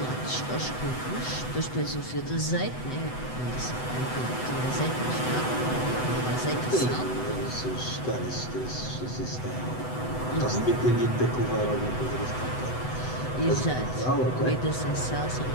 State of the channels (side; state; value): right; late; 8.0 ms